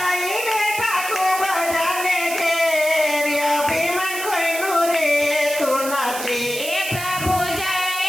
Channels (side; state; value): right; noise; hiss, 8 dB below the sound